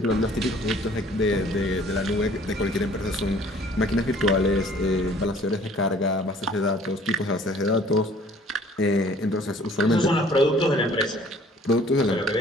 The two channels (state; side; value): normal; both; correlation 0.55